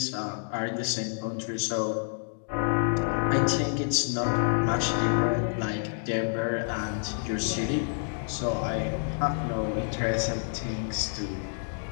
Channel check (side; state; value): right; silent; digital silence